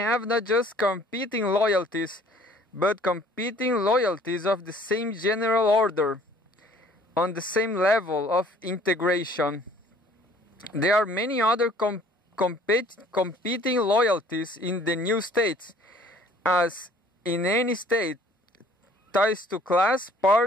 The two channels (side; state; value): both; normal; correlation 0.55